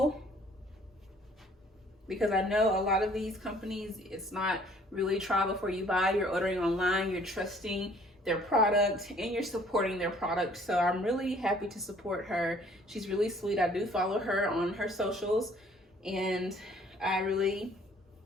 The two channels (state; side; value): normal; both; correlation 0.58